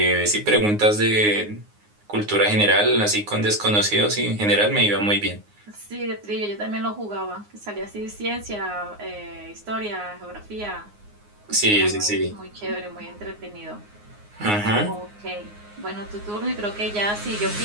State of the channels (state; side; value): late; left; 9.6 ms